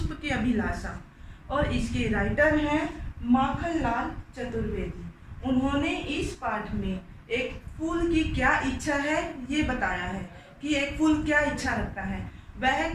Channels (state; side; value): identical; both; correlation 1.00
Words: की अभिलाषा, और इसके राइटर हैं माखनलाल चतुर्वेदी। उन्होंने इस पाठ में एक फूल की क्या इच्छा है ये बताया है कि एक फूल क्या इच्छा रखता है। वह